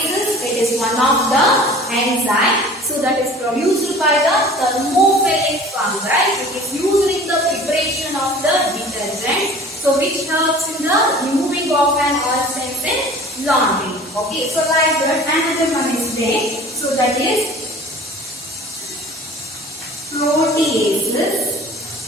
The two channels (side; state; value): both; normal; correlation 0.45